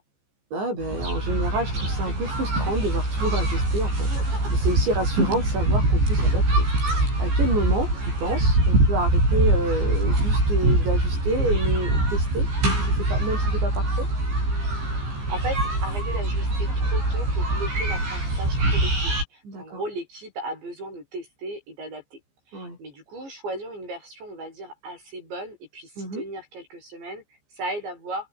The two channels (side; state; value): left; late; 15 ms